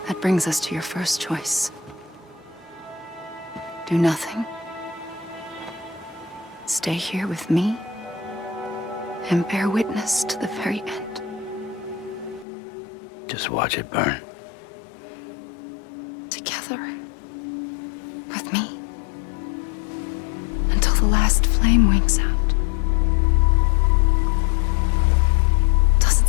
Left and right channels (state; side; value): drops out; right; at 12.5 s